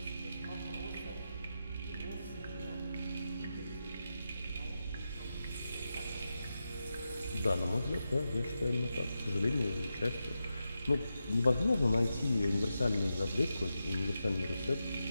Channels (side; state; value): both; inverted; correlation -0.89